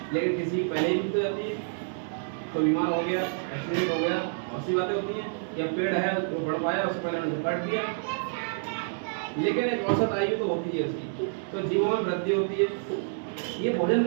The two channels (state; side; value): silent; left; digital silence